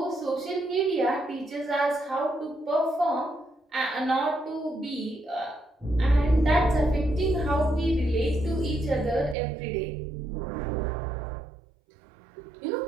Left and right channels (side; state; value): left; drops out; at 9.3 s